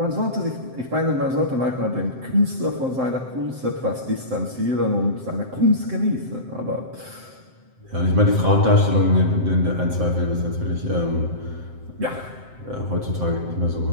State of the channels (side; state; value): left; late; 7.7 ms